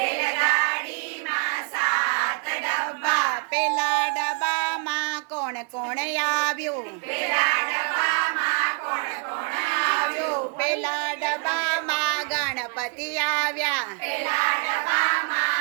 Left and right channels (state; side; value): quieter; left; 37.8 dB